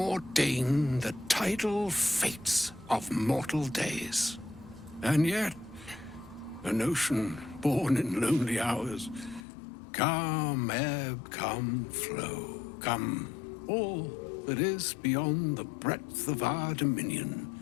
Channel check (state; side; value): drops out; right; at 9.5 s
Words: the tidal fates of mortal days. And yet, an ocean born in lonely hours, come ebb, come flow, come all that is beyond the breadth of our dominion.